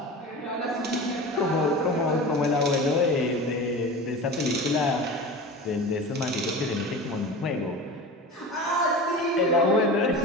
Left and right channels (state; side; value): normal; both; correlation 0.32